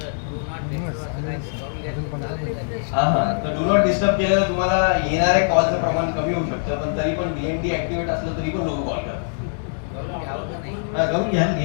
हा तर डू नॉट डिस्टर्ब केलं तर तुम्हाला येणाऱ्या कॉलचं प्रमाण कमी होऊ शकतं पण तरी पण DND ऍक्टिव्हेट असलं तरी पण लोक कॉल करतात. घ्यावं का नाही हा करून घ्या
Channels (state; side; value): silent; right; digital silence